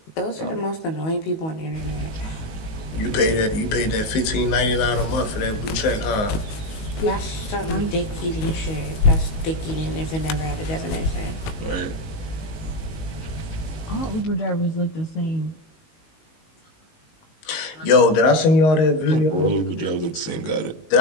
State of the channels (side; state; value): right; late; 19 ms